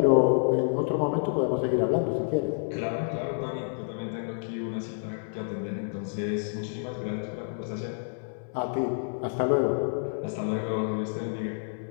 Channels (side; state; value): right; silent; 59 dB below the other